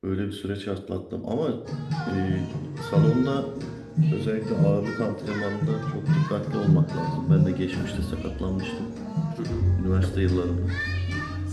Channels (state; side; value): identical; both; correlation 1.00